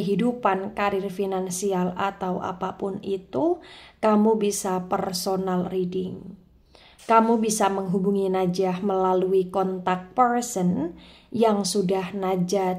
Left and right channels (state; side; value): identical; both; correlation 1.00